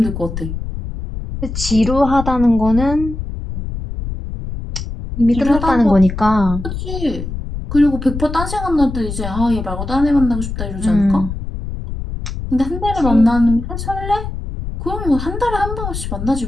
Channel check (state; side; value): noise; left; rumble, 6 dB below the sound